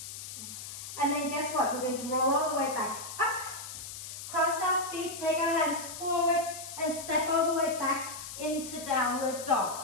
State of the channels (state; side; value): noise; left; hiss, 10 dB below the sound